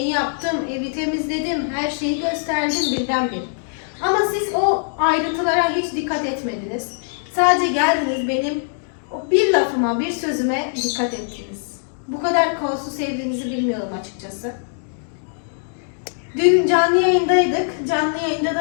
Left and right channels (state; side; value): silent; right; digital silence